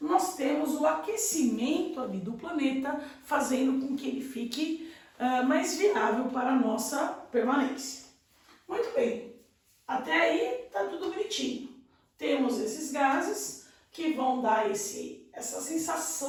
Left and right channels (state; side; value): identical; both; correlation 1.00